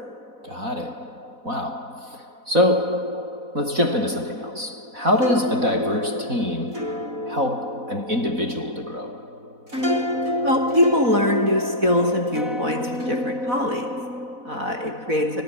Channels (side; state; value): left; late; 4.0 ms